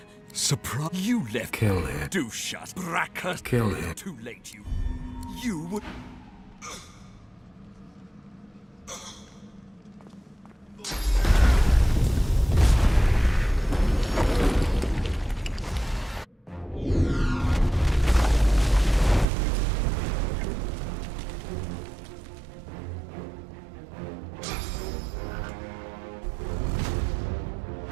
Surprise! You left... Kill him. Do shut. Bracker. Kill him. Too late, you... You would...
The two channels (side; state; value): left; drops out; at 19.2 s